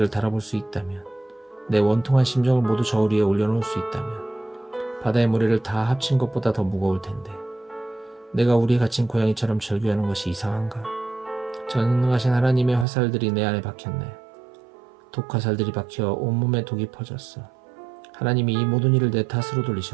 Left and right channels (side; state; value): left; drops out; at 12.9 s